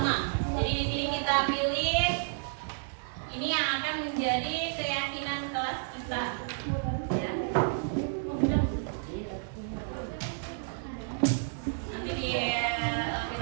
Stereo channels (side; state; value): left; silent; digital silence